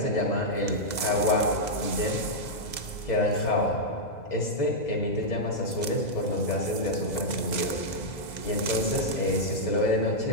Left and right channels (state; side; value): late; right; 2.0 ms